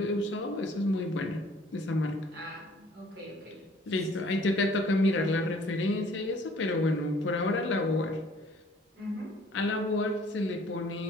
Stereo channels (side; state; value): both; normal; correlation 0.56